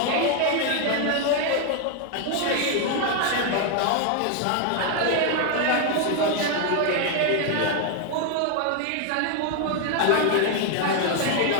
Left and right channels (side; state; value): both; different; correlation 0.01